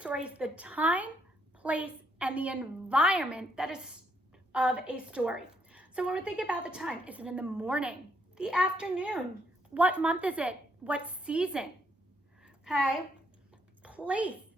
is the time, place, and the environment that is of a story. So when we're thinking about the time, is it in the morning, the afternoon? What month is it? What season? Okay. Place.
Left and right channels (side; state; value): both; normal; correlation 0.73